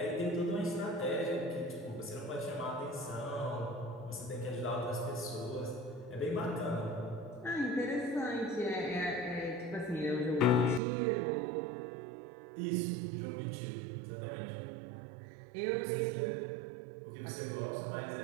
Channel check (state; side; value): drops out; left; at 10.8 s